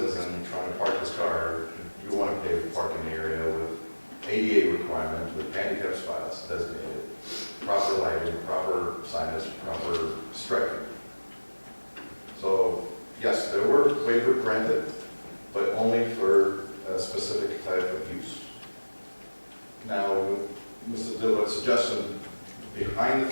and trying to park his car, you want to pave the parking area with ADA requirements, with handicap spots designated, proper lighting, proper signage, proper striping. So, yes, there were waivers granted, but only for a specific type of use. Now, Mr. Dilbert's suggestion, behind the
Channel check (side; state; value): both; inverted; correlation -1.00